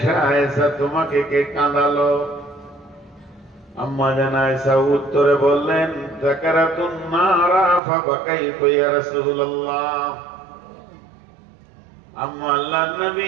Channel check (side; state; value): left; drops out; at 7.8 s